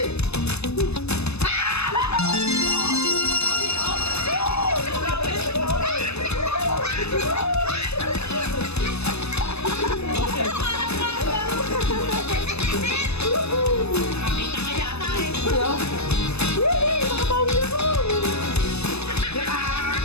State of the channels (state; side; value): late; right; 0.80 ms